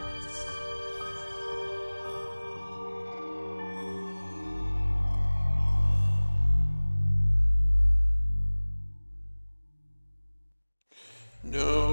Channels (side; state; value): both; inverted; correlation -1.00